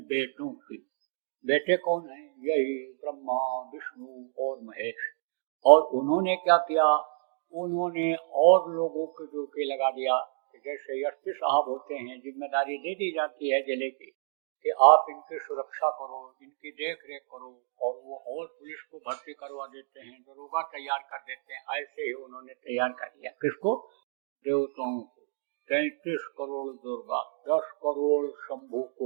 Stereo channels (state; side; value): silent; left; digital silence